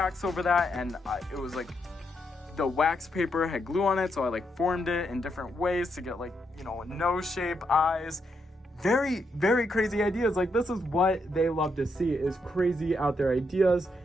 over that, and it was like the wax paper had glue on it, so I like formed it in different ways to get like, you know, a nose shape, eyes. Very, very crazy ideas. Like, this is what they love to see, is crazy out there ideas.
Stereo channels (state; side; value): normal; both; correlation 0.80